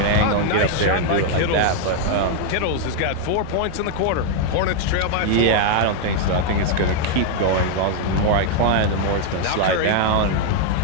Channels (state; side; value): different; both; correlation 0.00